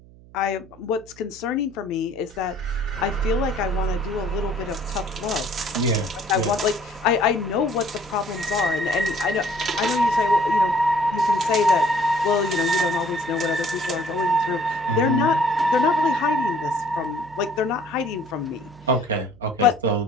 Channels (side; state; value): right; noise; hum, 23 dB below the sound